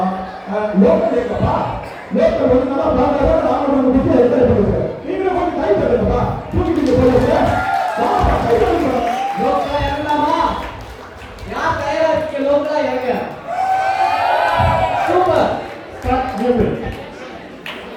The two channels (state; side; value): identical; both; correlation 1.00